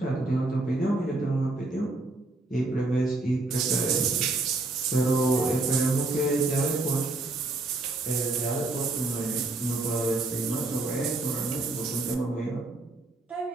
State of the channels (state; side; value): quieter; left; 3.1 dB